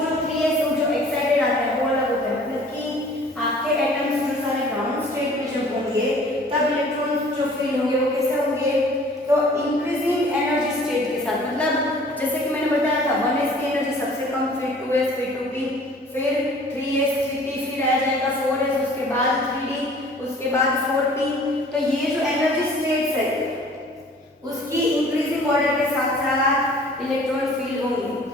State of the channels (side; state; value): both; normal; correlation 0.51